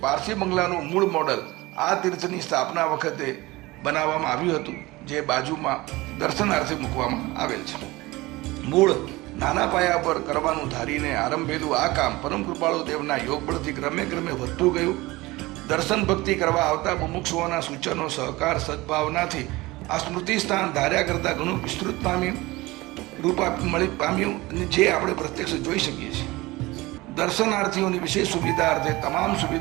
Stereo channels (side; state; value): left; quieter; 20.7 dB